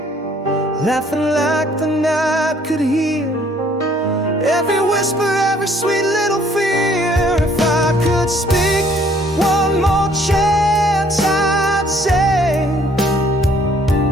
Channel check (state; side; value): normal; both; correlation 0.61